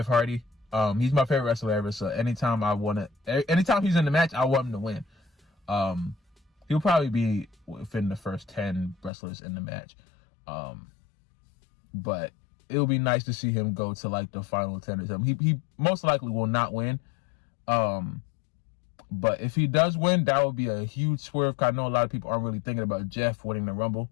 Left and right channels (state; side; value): drops out; right; at 9.1 s